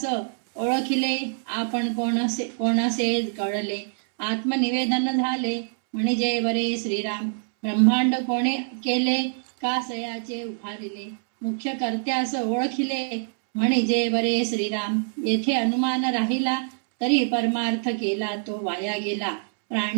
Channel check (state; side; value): silent; left; 62 dB below the other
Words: ओळखिले आपण कोणसे कळले. आत्मनिवेदन झाले म्हणजे वरे श्रीराम. ब्रह्मांड कोणे केले कासयाचे उभारिले. मुख्य कर्त्यास ओळखिले म्हणजे बरे श्रीराम. येथे अनुमान राहिला तरी परमार्थ केला तो वाया गेला.